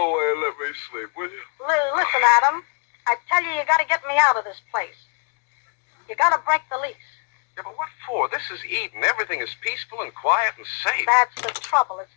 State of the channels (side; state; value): right; quieter; 38.8 dB